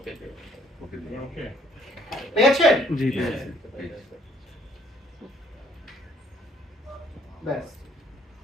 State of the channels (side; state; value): both; normal; correlation 0.62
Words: okay পেয়েছেন জি পেয়েছি ব্যাস